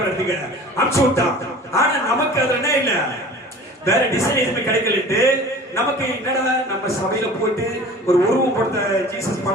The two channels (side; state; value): both; normal; correlation 0.42